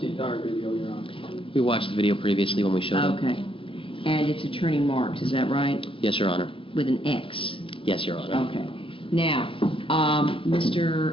the entire video, Your Honor. We watched the video previously when we showed up. Okay. And it's Attorney Marks, is that right? Yes, Your Honor. With an X? Yes, Your Honor. Okay. Now,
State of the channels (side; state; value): right; late; 0.25 ms